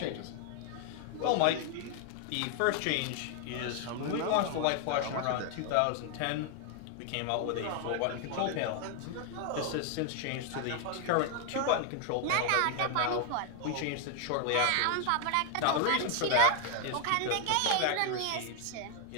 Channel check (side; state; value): both; different; correlation 0.00